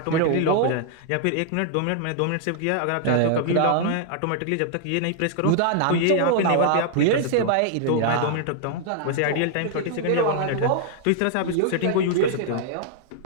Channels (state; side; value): different; both; correlation -0.01